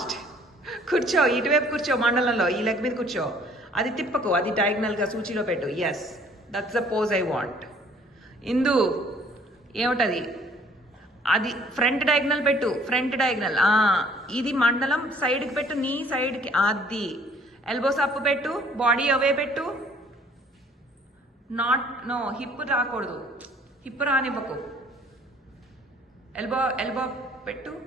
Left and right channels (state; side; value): normal; both; correlation 0.58